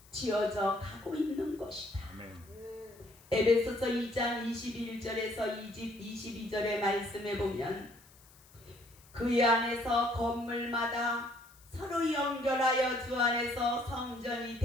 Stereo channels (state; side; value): noise; left; hiss, 26 dB below the sound